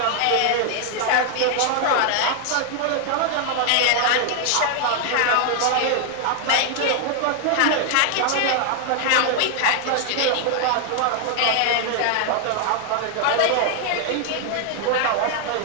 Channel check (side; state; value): both; different; correlation 0.00